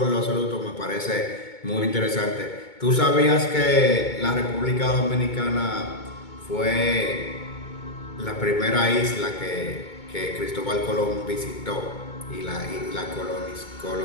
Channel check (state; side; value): late; right; 2.2 ms